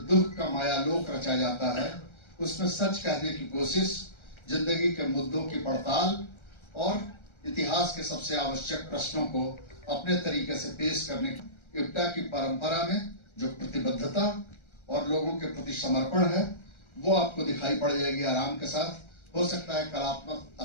का मायालोक रचा जाता है, उसमें सच कहने की कोशिश, जिंदगी के मुद्दों की पड़ताल और इतिहास के सबसे आवश्यक प्रश्नों को अपने तरीके से पेश करने की इप्टा की परंपरा में जो प्रतिबद्धता और लोगों के प्रति समर्पण है वो आपको दिखाई पड़ जाएगी आराम के साथ। हो सकता है कलात्मक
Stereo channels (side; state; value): right; late; 1.3 ms